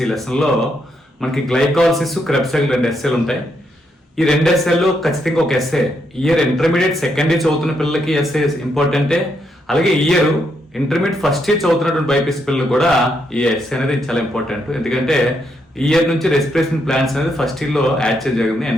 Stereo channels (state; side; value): normal; both; correlation 0.78